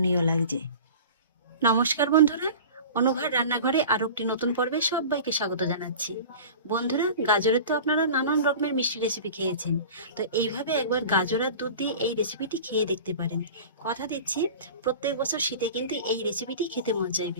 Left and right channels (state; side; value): inverted; both; correlation -0.37